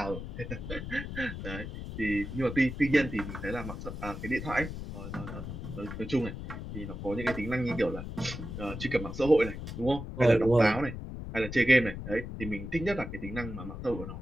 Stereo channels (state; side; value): noise; left; rumble, 8 dB below the sound